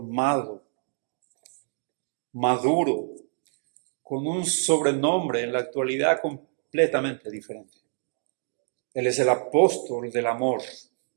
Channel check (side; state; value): left; silent; digital silence